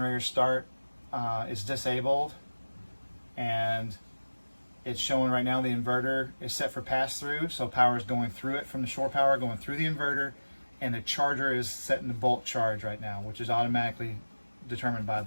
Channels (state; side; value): inverted; both; correlation -1.00